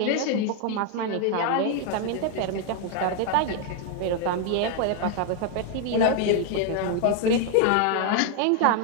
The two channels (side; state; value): both; different; correlation 0.00